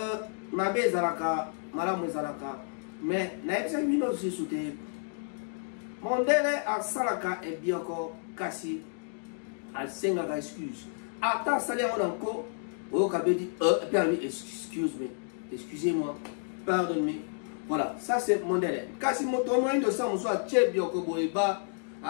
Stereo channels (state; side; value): silent; right; digital silence